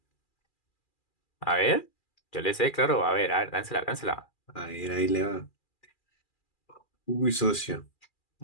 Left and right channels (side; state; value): right; late; 2.4 ms